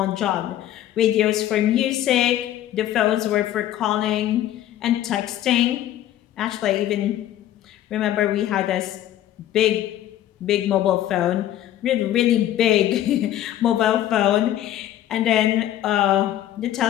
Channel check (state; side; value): quieter; right; 12.5 dB